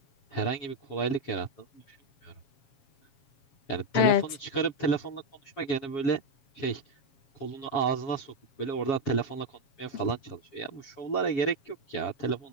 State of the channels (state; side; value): late; right; 7.3 ms